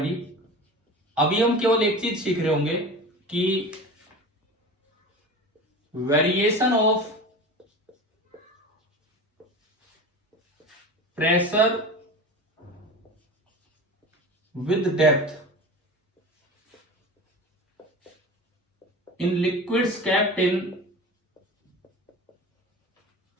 अभी हम केवल एक चीज सीख रहे होंगे कि variation of pressure with depth in liquids kept in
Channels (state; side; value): normal; both; correlation 0.33